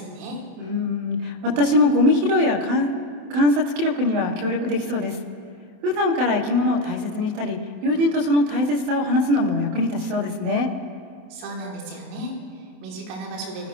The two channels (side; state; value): left; late; 27 ms